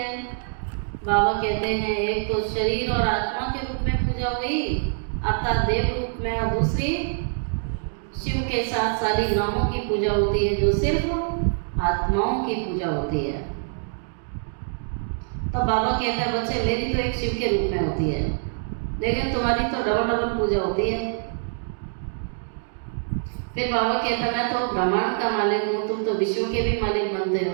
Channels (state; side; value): silent; left; 62 dB below the other